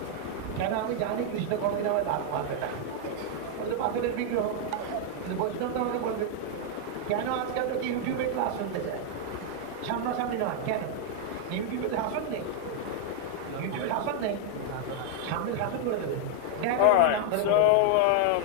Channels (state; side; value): different; both; correlation 0.00